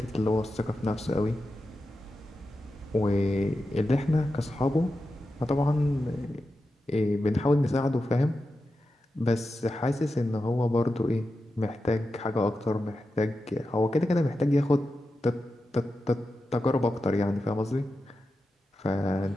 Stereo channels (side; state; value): both; normal; correlation 0.91